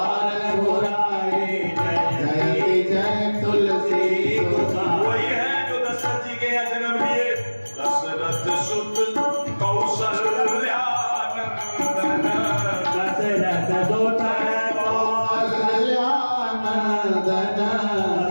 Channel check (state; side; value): inverted; both; correlation -1.00